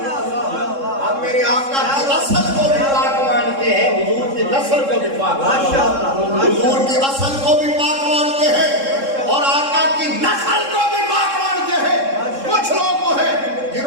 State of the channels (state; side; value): late; left; 3.7 ms